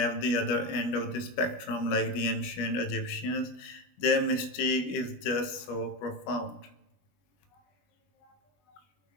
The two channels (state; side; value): late; right; 21 ms